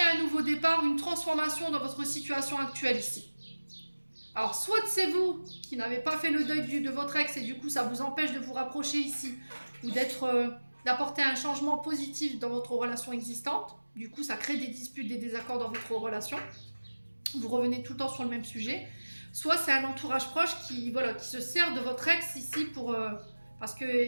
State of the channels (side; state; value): both; inverted; correlation -1.00